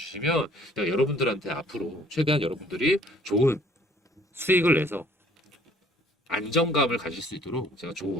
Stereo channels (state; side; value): normal; both; correlation 0.57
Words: 제가 여러분들한테 앞으로 최대한 여러분들이 좋은 수익을 내서 안정감을 가질 수 있도록 제가